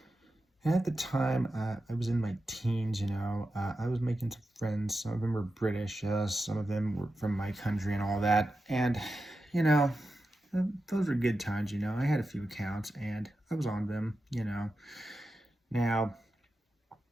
at the time, I was in my teens, I was making some friends. Some of them were British, some of them were from my country and all that. And, you know, those were good times. I had a few accounts and I was on them. Now,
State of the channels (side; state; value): both; normal; correlation 0.91